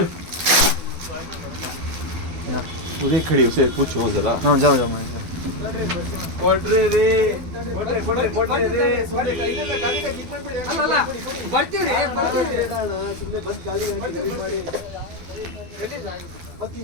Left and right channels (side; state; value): left; late; 12 ms